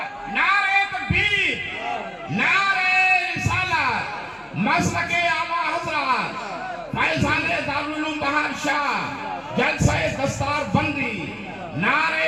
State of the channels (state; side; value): identical; both; correlation 1.00